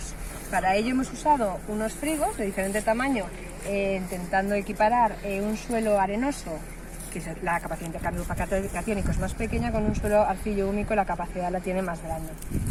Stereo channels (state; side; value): identical; both; correlation 1.00